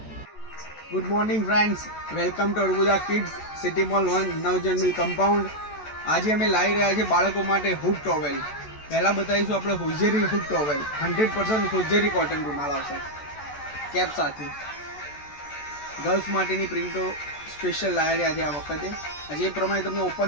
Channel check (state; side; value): late; right; 14 ms